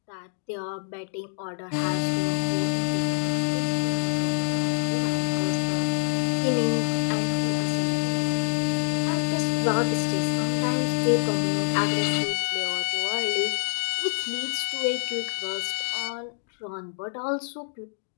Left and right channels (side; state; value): right; silent; digital silence